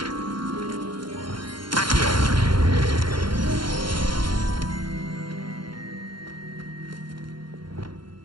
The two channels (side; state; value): left; late; 0.72 ms